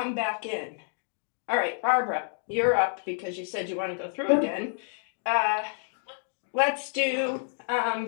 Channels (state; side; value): silent; right; 59 dB below the other